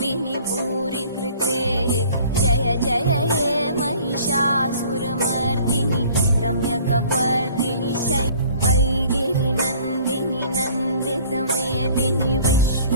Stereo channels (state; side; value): inverted; both; correlation -0.52